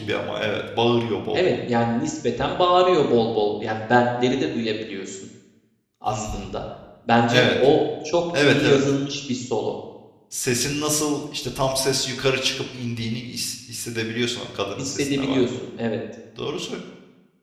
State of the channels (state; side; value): identical; both; correlation 1.00